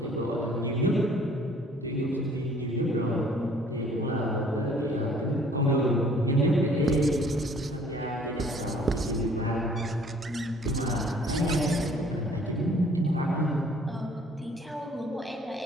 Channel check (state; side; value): normal; both; correlation 0.56